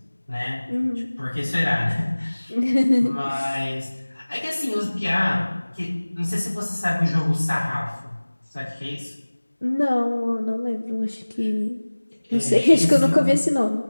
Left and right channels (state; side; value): inverted; both; correlation -1.00